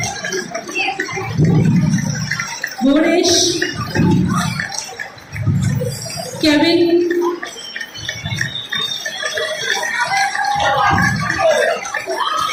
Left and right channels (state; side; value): identical; both; correlation 1.00